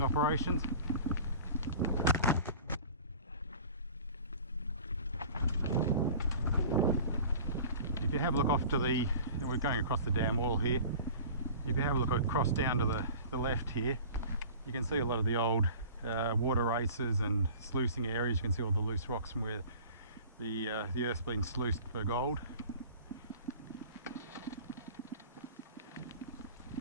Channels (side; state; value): both; inverted; correlation -0.42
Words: operations. If you have a look off to the, we're going across the dam wall here, if you have a look across down to the left here, you can see a lot of the old water races and sluicing areas. You can see all the loose rocks from where the earth's been sluiced for gold.